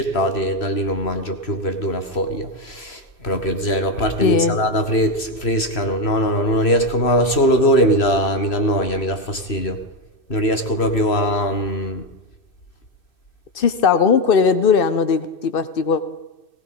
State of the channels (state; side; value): late; right; 3.0 ms